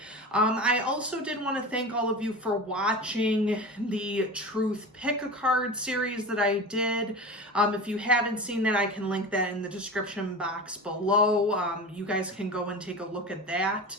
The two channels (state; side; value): normal; both; correlation 0.30